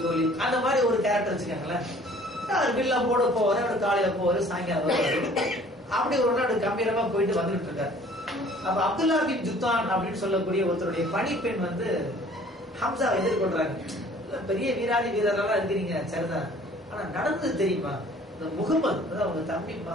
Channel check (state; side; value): normal; both; correlation 0.53